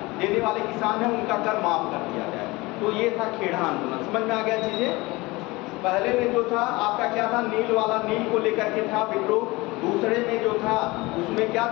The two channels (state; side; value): quieter; right; 22.3 dB